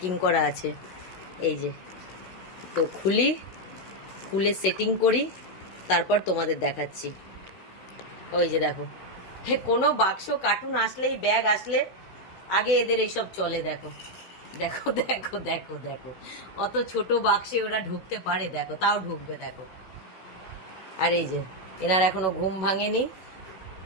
করা আছে। এই যে তো খুলি, খুলে সেটিং করি, তারপর তোমাদের দেখাচ্ছি। ওই যে দেখো, কোনো বাক্স কার্টুন আসলেই, ব্যাগ আসলে আগে এদের এইসব চলে। দেখো দেখো দেখো দেখো দেখো, অত ছোট বাক্সে ওরা ঢুকতে পারে, দেখো তাও ঢুকবে দেখো। আর এই যে এনার এখনো ঘুম ভাঙেনি।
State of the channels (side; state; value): right; late; 16 ms